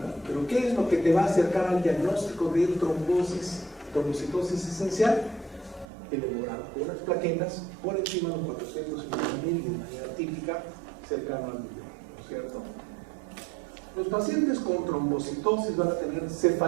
Pero ¿qué es lo que te va a acercar al diagnóstico de trombocitosis esencial? El hemograma, con unas plaquetas por encima de los 450.000 y de manera típica cercano al millón, ¿no es cierto? Los pacientes con trombocitosis van a tener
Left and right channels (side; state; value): left; drops out; at 5.9 s